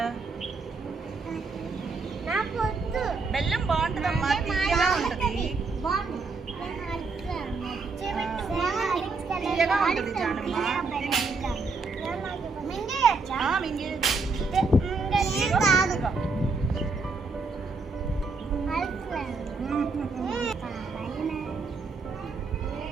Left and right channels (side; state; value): left; quieter; 4.1 dB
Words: బెల్లం బాగుంటుందమ్మా, తీయగా ఉంటుంది. తీయగా ఉంటుంది జానమ్మ.